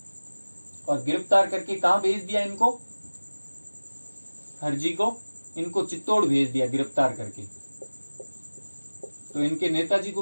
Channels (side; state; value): both; inverted; correlation -1.00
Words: और गिरफ्तार करके कहां भेज दिया इनको, हरजी को इनको चित्तौड़ भेज दिया गिरफ्तार करके। तो इनके नेताजी